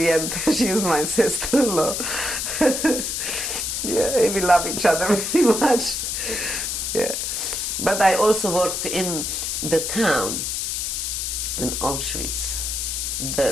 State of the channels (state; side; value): noise; left; hiss, 2 dB below the sound